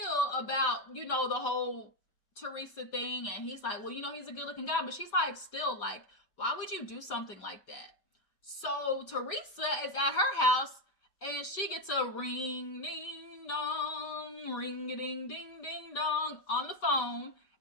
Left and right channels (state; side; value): late; right; 5.2 ms